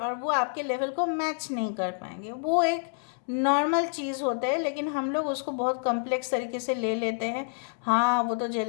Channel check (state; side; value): silent; right; 59 dB below the other